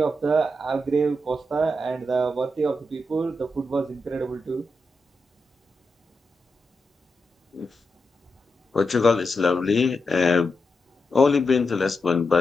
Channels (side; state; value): both; normal; correlation 0.86